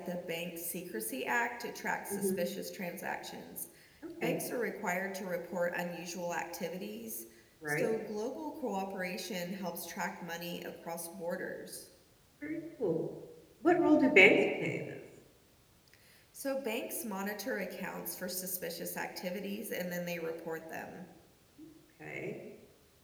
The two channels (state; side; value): identical; both; correlation 1.00